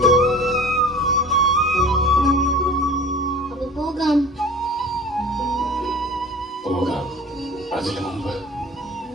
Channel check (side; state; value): both; normal; correlation 0.43